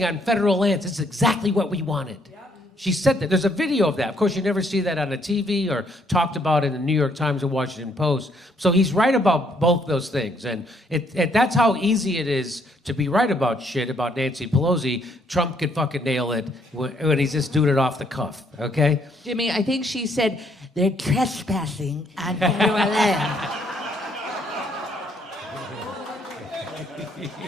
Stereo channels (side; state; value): both; normal; correlation 0.69